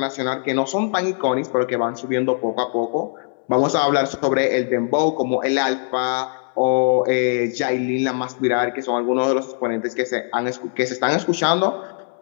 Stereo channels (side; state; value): right; silent; 57 dB below the other